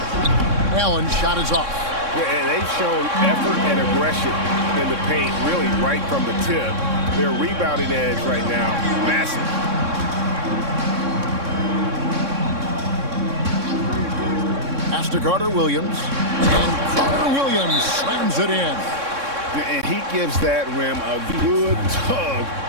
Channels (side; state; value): left; late; 3.6 ms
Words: Allen's shot is off. Yeah, they've shown effort and aggression in the paint, really right from the tip. Their rebounding edge right now, massive. Pass to Carter-Williams. And Carter-Williams slams it in. And he gives that rim a good tug